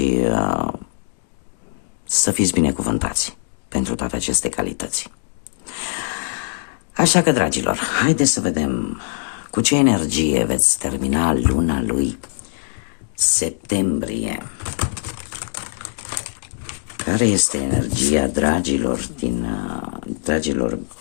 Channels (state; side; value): silent; right; digital silence